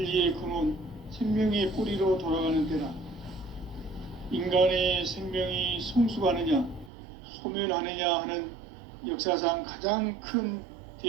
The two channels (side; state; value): left; drops out; at 6.9 s